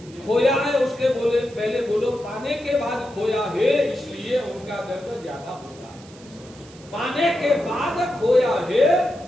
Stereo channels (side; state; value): right; noise; hiss, 23 dB below the sound